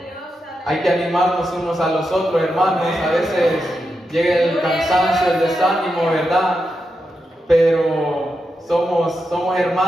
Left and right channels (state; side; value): normal; both; correlation 0.87